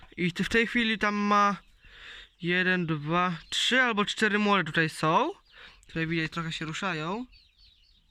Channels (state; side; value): identical; both; correlation 1.00